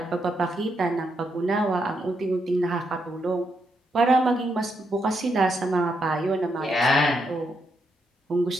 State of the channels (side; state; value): both; normal; correlation 0.80